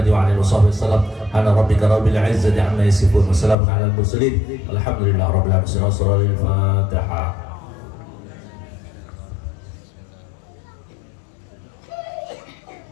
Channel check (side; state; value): right; drops out; at 3.6 s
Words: وعلى آله وصحبه وسلم أنا ربك رب العزة عما يصفون وسلام على المرسلين الحمد لله رب العالمين. الفاتحة.